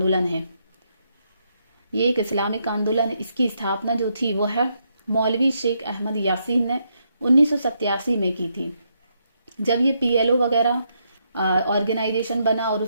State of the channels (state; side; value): inverted; both; correlation -0.78